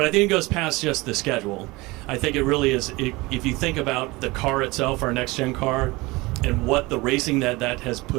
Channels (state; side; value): quieter; left; 22.5 dB